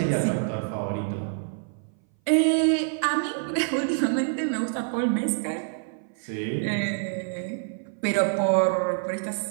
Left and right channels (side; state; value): left; silent; 58 dB below the other